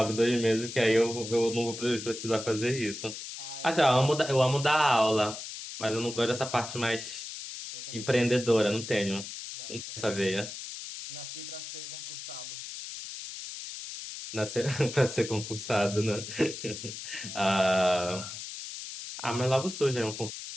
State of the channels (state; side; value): noise; left; hiss, 9 dB below the sound